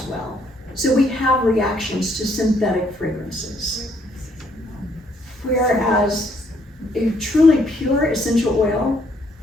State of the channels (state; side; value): normal; both; correlation 0.68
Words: well. So we have reactions to synthetic fragrances. Whereas a truly pure essential oil